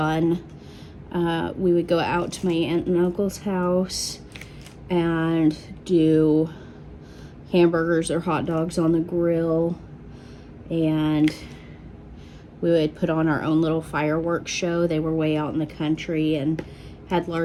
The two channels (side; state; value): both; identical; correlation 1.00